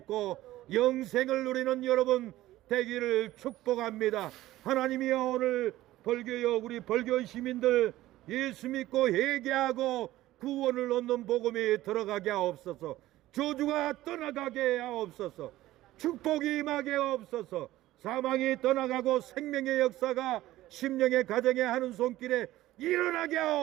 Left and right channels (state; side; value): quieter; left; 15.7 dB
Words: 영생을 누리는 여러분 되기를 축복합니다. 하나님이여, 오늘 벌교여 우리 벌교 시민들 예수 믿고 회개하고 구원을 얻는 복음이 들어가게 하옵소서. 저주가 떠나가게 하옵소서. 축복이 임하게 하옵소서. 사망이 떠나가고 생명의 역사가 심령의 가정에 하는 손길에 일어나게